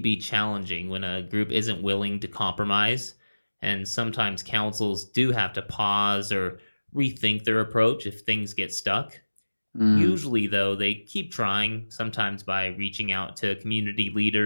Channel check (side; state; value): both; inverted; correlation -1.00